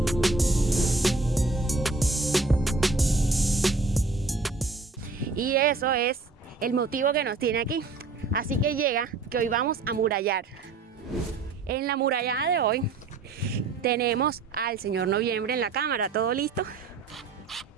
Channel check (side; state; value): left; quieter; 3.9 dB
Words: Y eso es el motivo que nos tiene aquí. Así que llega que hoy vamos a murallar. En la murallada de hoy tenemos al señor Noviembre en la cámara, ¿todo listo?